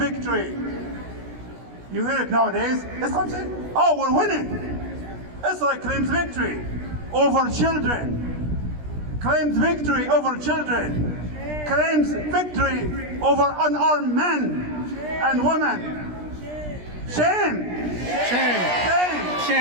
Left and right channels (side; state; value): left; late; 17 ms